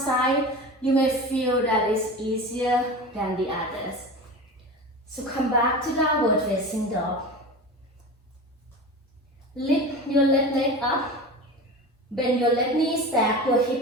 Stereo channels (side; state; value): both; normal; correlation 0.30